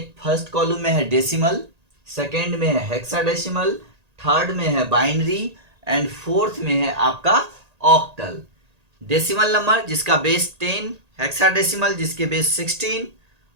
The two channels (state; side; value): late; left; 1.8 ms